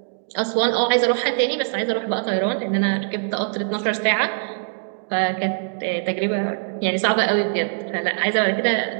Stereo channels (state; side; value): silent; left; digital silence